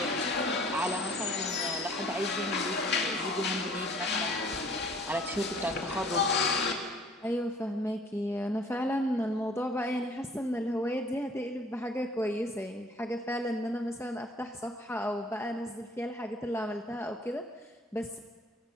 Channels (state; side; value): normal; both; correlation 0.54